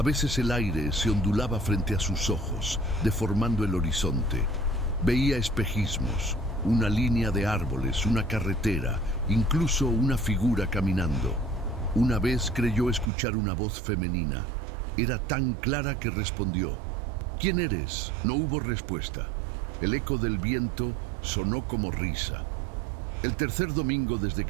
veces el aire se ondulaba frente a sus ojos, deformando el horizonte. Veía espejismos, una línea de árboles, una carretera, incluso una figura caminando. Una vez creyó escuchar una voz femenina. Era tan clara que respondió. «¿Quién eres?». No hubo respuesta. El eco del viento sonó como risa. El tercer domingo desde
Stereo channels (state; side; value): drops out; left; at 13.1 s